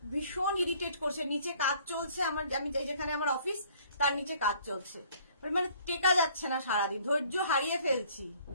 ভীষণ ইরিটেট করছে, নিচে কাজ চলছে আমার, আমি যেখানে আমার অফিস তার নিচে কাজ চলছে, মানে টেকা যাচ্ছে না, সারাদিন ধৈর্য হারিয়ে ফেলছি।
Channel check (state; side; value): inverted; both; correlation -0.57